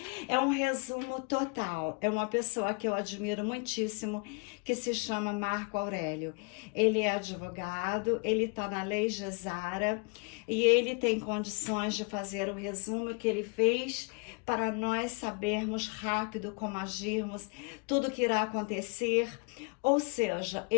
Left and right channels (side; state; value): right; quieter; 34.2 dB